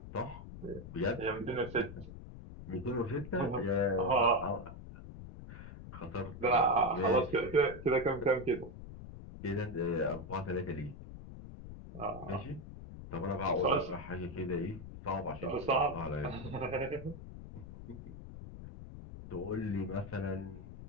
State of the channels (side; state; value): left; noise; rumble, 12 dB below the sound